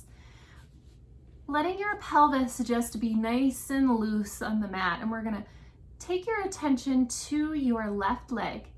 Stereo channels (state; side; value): identical; both; correlation 1.00